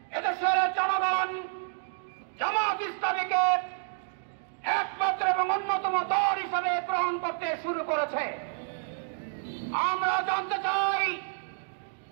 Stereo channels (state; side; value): silent; left; digital silence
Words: এদেশের জনগণ জামাত ইসলামীকে একমাত্র এবং অন্যতম দল হিসাবে গ্রহণ করতে শুরু করেছে। আমরা জানতে চাই